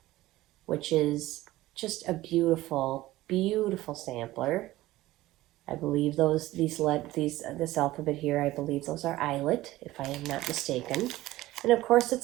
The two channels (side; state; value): left; quieter; 16.9 dB